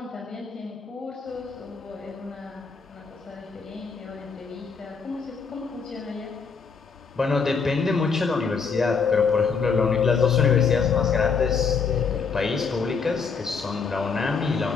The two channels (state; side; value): quieter; right; 5.4 dB